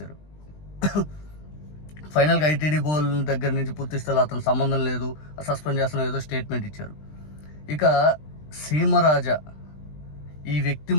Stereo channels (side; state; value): right; late; 20 ms